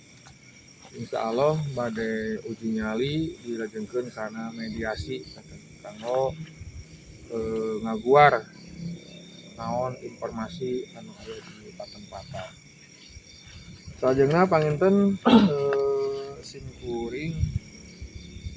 insyaallah bade uji nyali dilajengkeun kana mediasi kanggo ngaguar naon informasi anu aya di patempatan. Salajengna panginten sim kuring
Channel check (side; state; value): both; identical; correlation 1.00